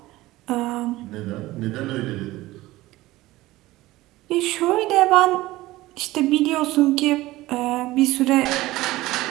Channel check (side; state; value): left; quieter; 18.0 dB